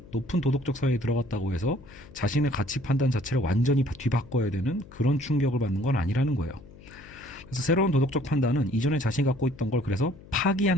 높은 도덕적 사회에 들어갔다고 해서 자신의 가치 판단 자체를 완전히 뒤바꿔야 되는 그런 충격을 받는 건 아니라는 거예요. 그래서 새로운 도덕적 판단은 이전에 자신이 갖고 있던 걸 그래서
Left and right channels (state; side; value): noise; left; hum, 20 dB below the sound